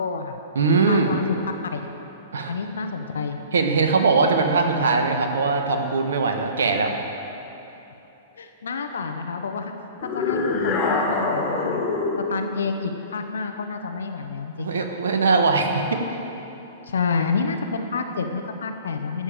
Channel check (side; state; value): both; inverted; correlation -0.48